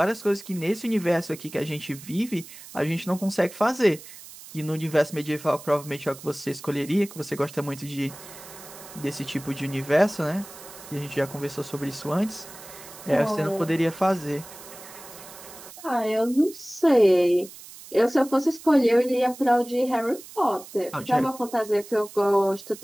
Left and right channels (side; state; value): right; noise; hiss, 17 dB below the sound